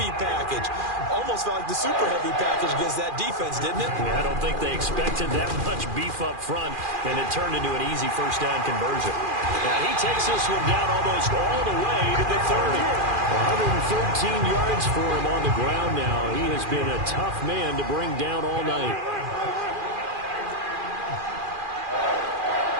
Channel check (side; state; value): left; late; 2.4 ms